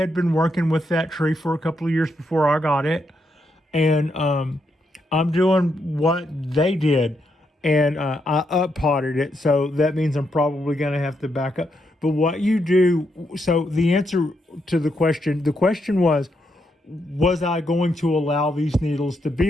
been working with that tree for a couple of years before I got it. And I'm doing what they did. And I up-potted it, so that means I'm probably going to have to back up. But what you do, so the answer to the question was I going to allow these needles to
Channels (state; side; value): normal; both; correlation 0.80